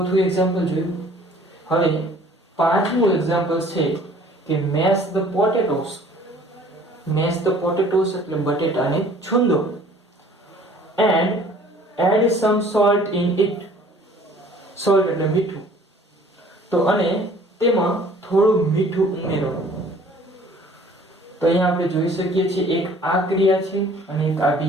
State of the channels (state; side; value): normal; both; correlation 0.53